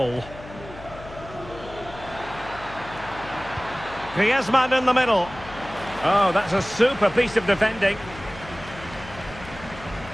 Griezmann in the middle. Oh, that's a super piece of defending.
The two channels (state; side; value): noise; left; hum, 16 dB below the sound